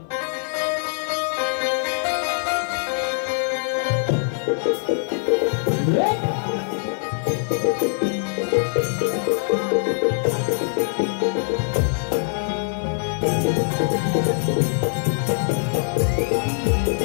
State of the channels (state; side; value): silent; right; 56 dB below the other